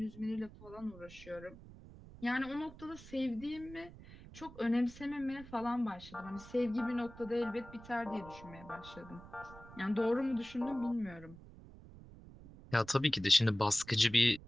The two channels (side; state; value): right; noise; rumble, 18 dB below the sound